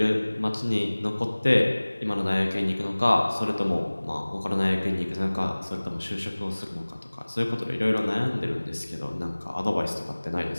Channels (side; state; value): both; inverted; correlation -1.00